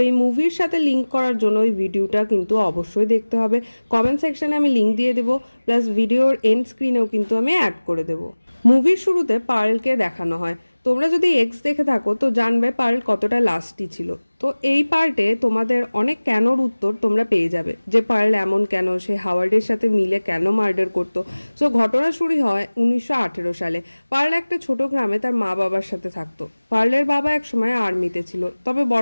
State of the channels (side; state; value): both; inverted; correlation -1.00